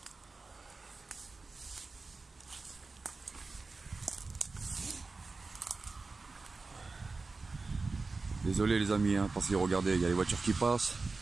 Désolé les amis, parce que regardez, il y a les voitures qui passent.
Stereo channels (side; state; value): left; quieter; 3.9 dB